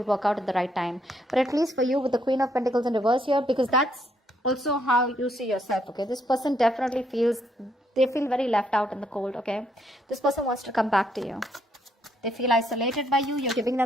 work out at the right time. But at least for you, with the Queen of Pentacles in reverse here, because that's also how you see yourself. Okay, this person definitely feels, they feel very left out in the cold. Okay, this person wants to come back to you. They feel isolated by you. You're giving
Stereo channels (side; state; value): both; normal; correlation 0.73